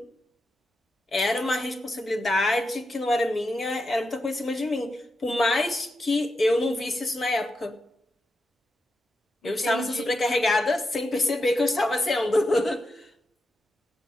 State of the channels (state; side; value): normal; both; correlation 0.87